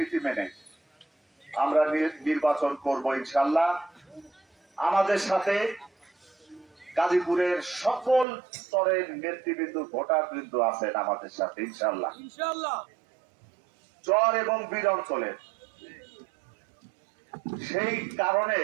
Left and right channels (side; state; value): left; drops out; at 8.2 s